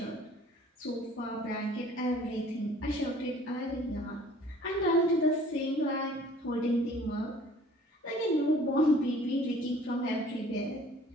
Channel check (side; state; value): both; normal; correlation 0.52